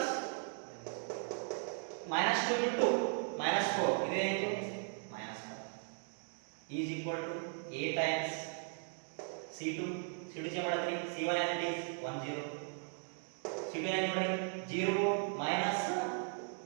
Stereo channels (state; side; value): silent; left; 53 dB below the other